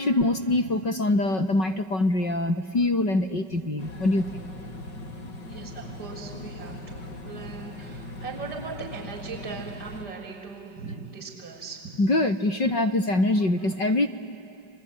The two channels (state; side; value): late; right; 5.4 ms